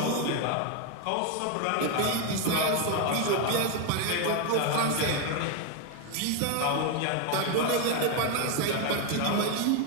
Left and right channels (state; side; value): different; both; correlation 0.01